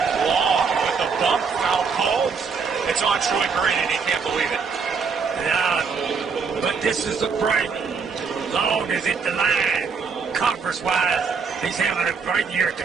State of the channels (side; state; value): left; quieter; 5.4 dB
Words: Long with the bump, foul called. It's on Troy Green, and he can't believe it. Yeah, but this is a break. Long is at the line. Conference-wise, he's having a great year at the